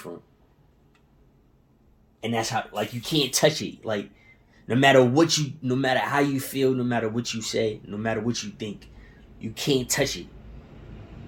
And that's how, like, you can't touch it. Like, no matter how you feel, no matter what you say, no matter what you think, you can't touch it.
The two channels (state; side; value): identical; both; correlation 1.00